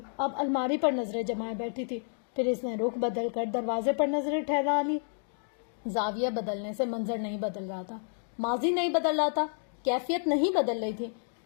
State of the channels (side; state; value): right; silent; digital silence